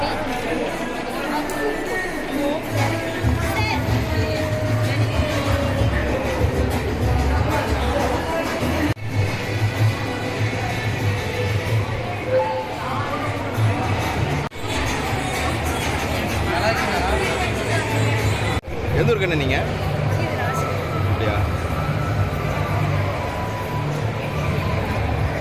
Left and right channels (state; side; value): identical; both; correlation 1.00